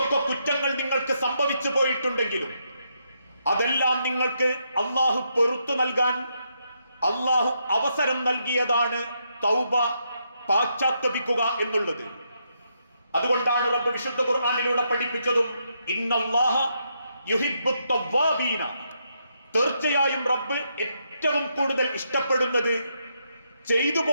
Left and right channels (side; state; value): both; inverted; correlation -0.79